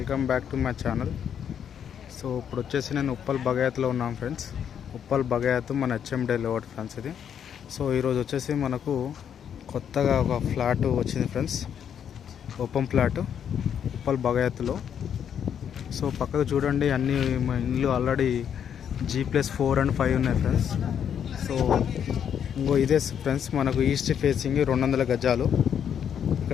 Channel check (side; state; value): right; quieter; 8.5 dB